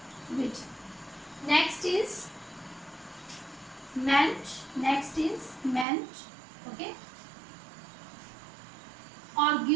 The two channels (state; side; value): drops out; left; at 5.9 s